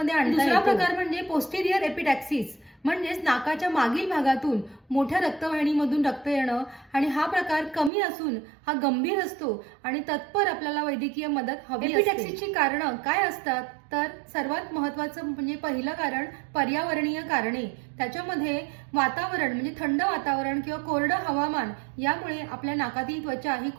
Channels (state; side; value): drops out; left; at 7.9 s